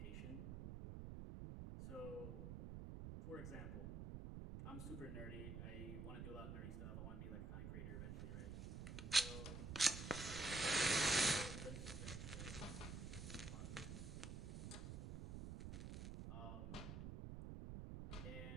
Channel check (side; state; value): right; noise; rumble, 6 dB below the sound